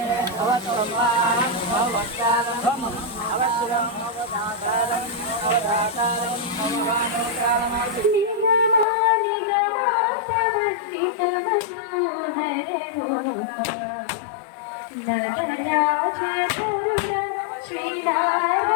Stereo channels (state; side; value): drops out; right; at 8.8 s